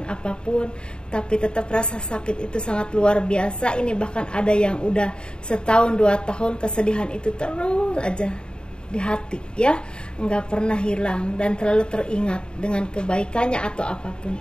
apapun, tapi tetap rasa sakit itu sangat luar biasa. Ini bahkan ada yang udah setahun 2 tahun kesedihan itu terus aja di hati ya, nggak pernah hilang dan terlalu teringat dengan kebaikannya atau apapun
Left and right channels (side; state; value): right; late; 0.050 ms